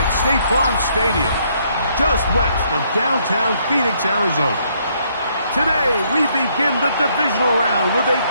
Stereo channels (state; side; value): inverted; both; correlation -0.70